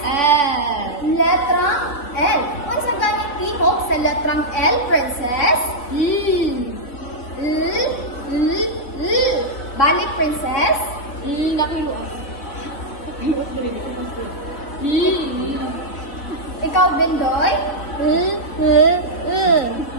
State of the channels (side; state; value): right; late; 3.3 ms